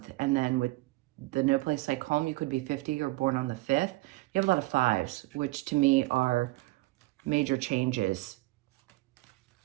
And then with the no place like home, you could be 50 or born on the 5th. You have a lot of 5s, which to me are major changes.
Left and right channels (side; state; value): left; quieter; 21.1 dB